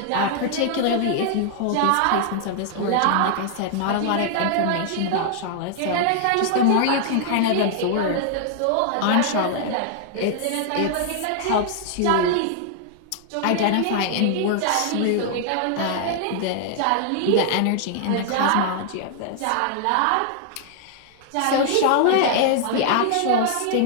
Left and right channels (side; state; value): both; different; correlation -0.01